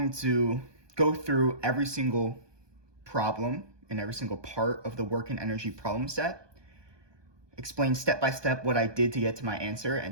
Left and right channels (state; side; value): late; left; 1.2 ms